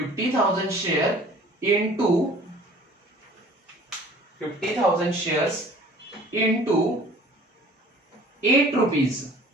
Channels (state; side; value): normal; both; correlation 0.49